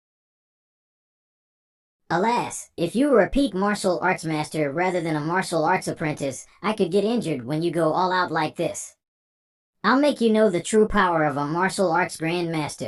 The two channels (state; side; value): identical; both; correlation 1.00